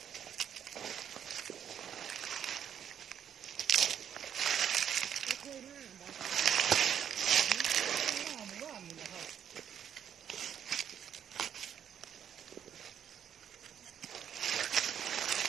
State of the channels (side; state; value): left; quieter; 9.0 dB